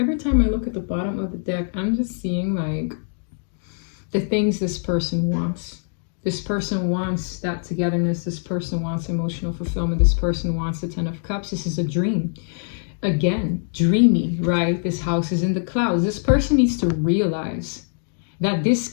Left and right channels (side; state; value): right; silent; digital silence